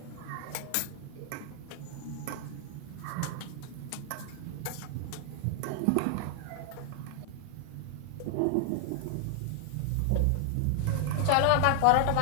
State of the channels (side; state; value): both; different; correlation 0.00